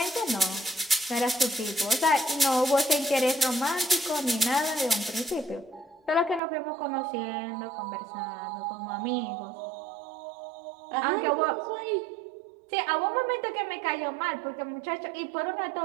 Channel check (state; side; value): drops out; left; at 6.4 s